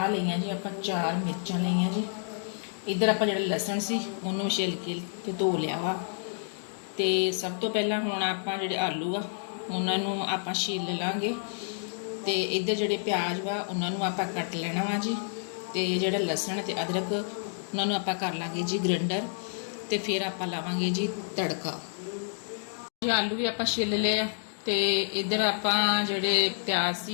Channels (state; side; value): silent; right; digital silence